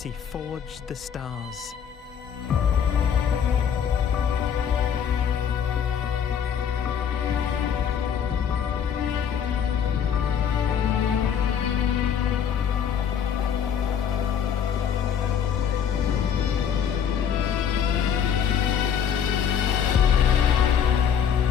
forged the stars.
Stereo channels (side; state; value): right; quieter; 8.1 dB